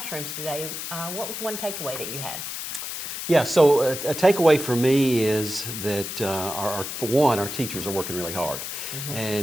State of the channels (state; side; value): noise; left; hiss, 6 dB below the sound